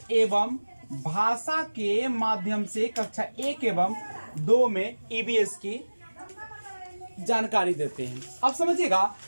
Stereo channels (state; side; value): inverted; both; correlation -1.00